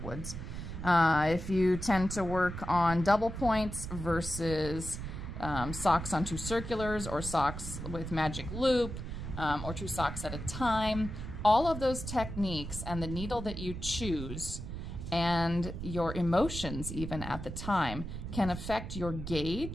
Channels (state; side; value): noise; right; rumble, 7 dB below the sound